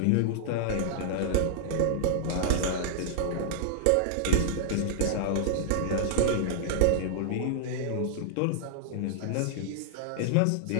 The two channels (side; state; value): both; different; correlation -0.01